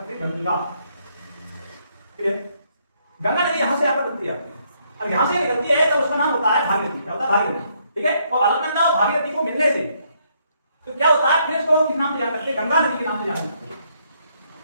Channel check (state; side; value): inverted; both; correlation -0.72